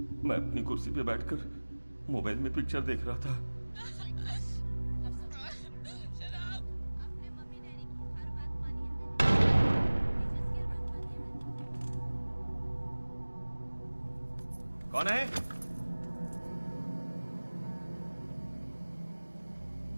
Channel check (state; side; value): inverted; both; correlation -1.00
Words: मैं अपनी कुर्सी पे बैठकर मोबाइल में पिक्चर देख रहा था। कौन है?